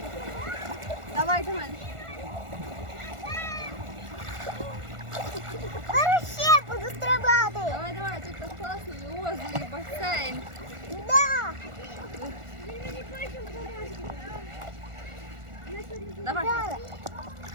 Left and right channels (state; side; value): late; left; 1.4 ms